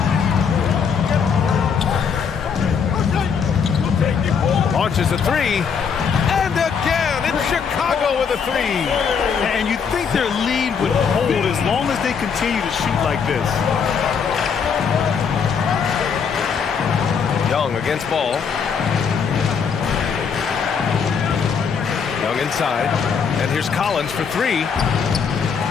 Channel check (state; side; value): quieter; right; 6.4 dB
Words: Launches a three. And again, it's Chicago with a three. And you think their lead would hold as long as they continue to shoot like this. Young against Ball. Young inside. And here's Collins for three.